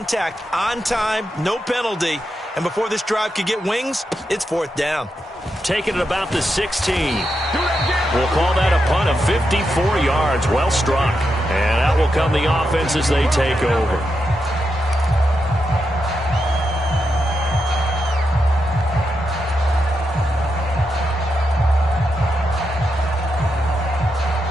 on time, no penalty, and before this drive could get wings, it's 4th down. Taking it about the 16. We'll call that a punt of 54 yards. Well struck. And out will come the offense as they take over.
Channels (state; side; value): normal; both; correlation 0.85